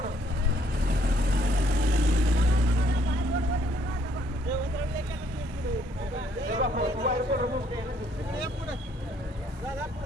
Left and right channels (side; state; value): both; normal; correlation 0.67